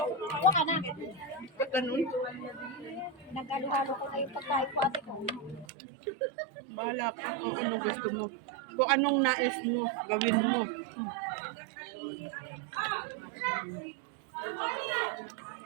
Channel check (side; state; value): left; drops out; at 5.7 s